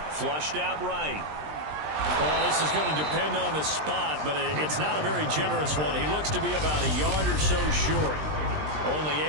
Flushed out right. Well, this is going to depend on the spot, but it's not a very generous one. He looks to be about a yard or so short. Only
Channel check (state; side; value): late; left; 20 ms